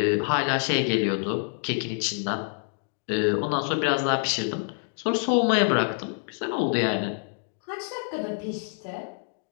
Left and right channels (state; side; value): silent; right; 58 dB below the other